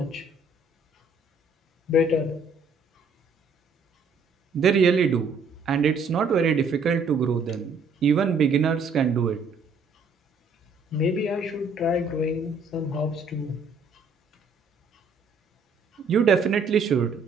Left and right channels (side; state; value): left; quieter; 3.9 dB